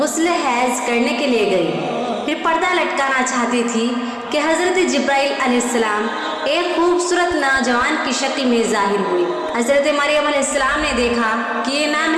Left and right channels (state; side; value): identical; both; correlation 1.00